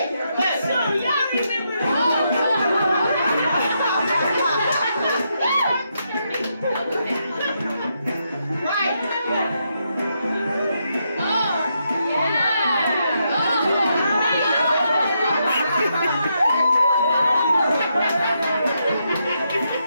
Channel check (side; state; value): both; inverted; correlation -0.80